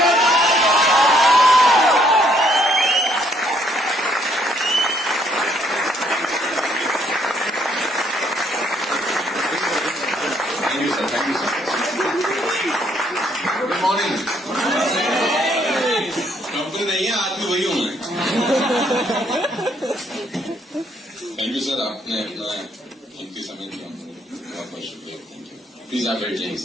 Thank you, sir. Good morning. Company नहीं है, आदमी वही हूं मैं. थैंक यू सर, आपने अपना कीमती समय दिया. बहुत बहुत शुक्रिया. Thank you. प्लीज आप बैठ जाइए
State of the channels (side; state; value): both; normal; correlation 0.68